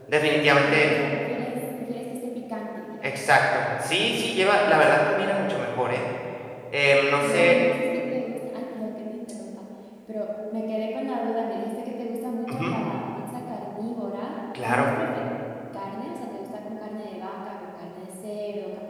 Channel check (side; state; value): both; identical; correlation 1.00